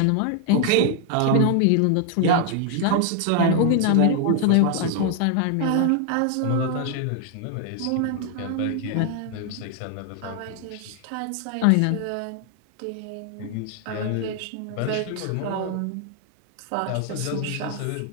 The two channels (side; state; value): both; different; correlation 0.00